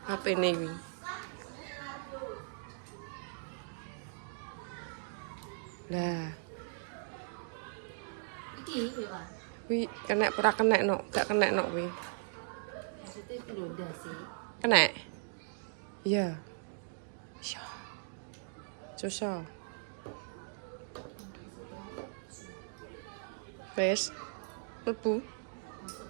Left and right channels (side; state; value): left; silent; digital silence